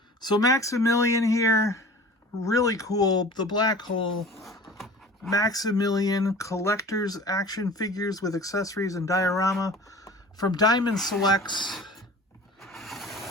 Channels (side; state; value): both; normal; correlation 0.41